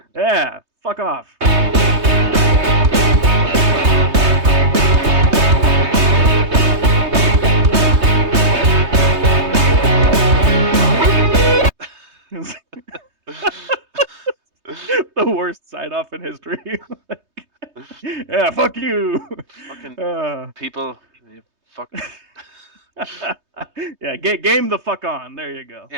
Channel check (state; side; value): late; left; 3.2 ms